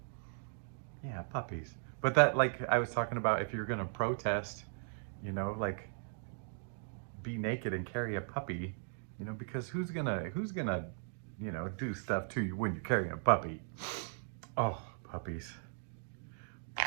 Yeah, puppies. But that, like I was talking about, if you're gonna protest, you know, like be naked and carry a puppy, you know, because who's gonna, you know, do stuff to you when you're carrying a puppy? Oh, puppies.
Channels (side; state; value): left; silent; digital silence